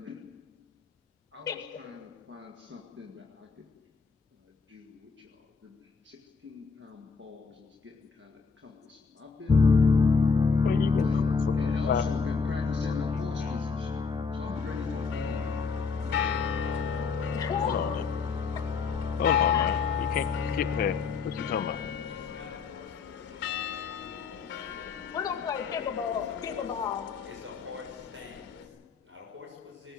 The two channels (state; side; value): quieter; right; 5.1 dB